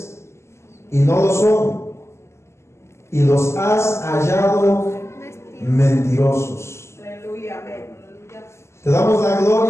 y no lo son, y los has hallado mentirosos. Aleluya. Amén. Te damos la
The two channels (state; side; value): late; right; 0.13 ms